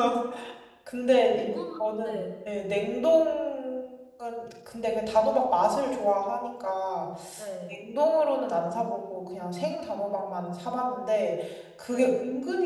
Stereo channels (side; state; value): both; identical; correlation 1.00